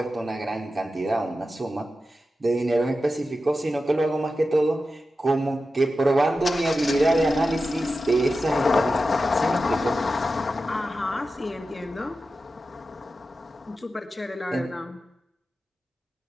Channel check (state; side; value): normal; both; correlation 0.92